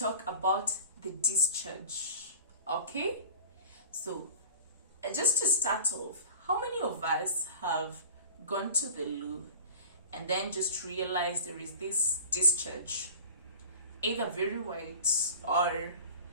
about the discharge, okay? So just to start off, how many of us have gone to the loo and then just realized there is this discharge, either very white or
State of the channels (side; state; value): both; inverted; correlation -0.39